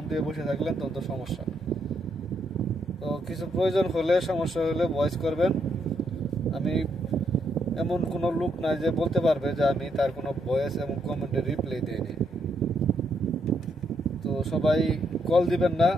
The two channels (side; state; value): both; normal; correlation 0.76